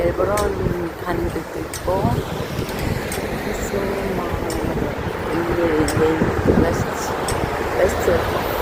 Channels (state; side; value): identical; both; correlation 1.00